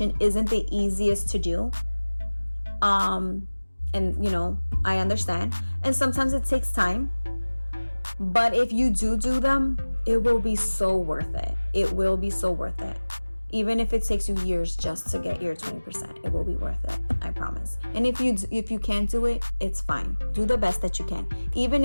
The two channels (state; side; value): inverted; both; correlation -1.00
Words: isn't the easiest to do. And I understand. And sometimes it takes time. But if you do them, it will be so worth it. It will be so worth it. Even if it takes you years just to get your 20%, it will be worth it. I promise. And if you can't do it, it's fine. Do the best that you can. Even